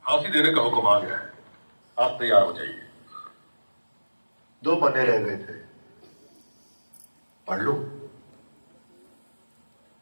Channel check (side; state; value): both; inverted; correlation -1.00